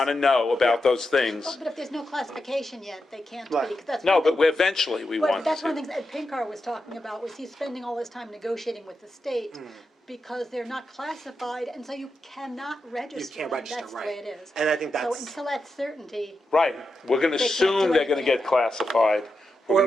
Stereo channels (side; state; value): both; normal; correlation 0.88